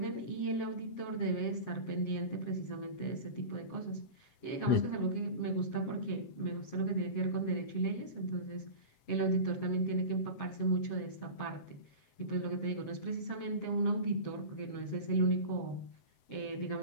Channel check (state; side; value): late; right; 7.8 ms